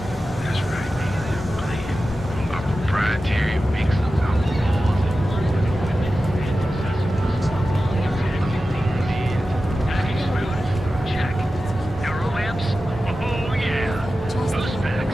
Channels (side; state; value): both; normal; correlation 0.93